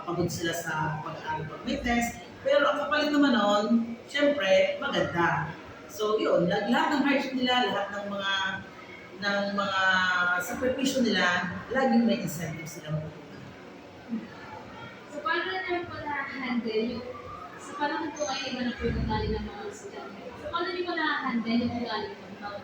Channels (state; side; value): identical; both; correlation 1.00